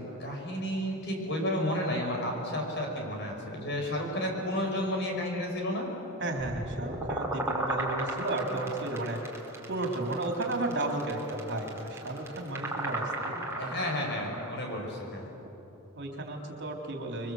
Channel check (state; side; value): normal; both; correlation 0.20